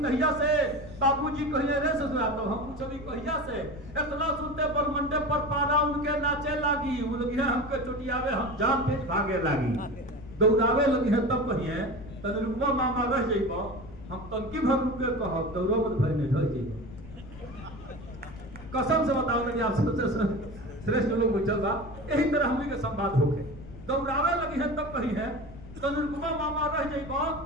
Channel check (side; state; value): left; noise; rumble, 15 dB below the sound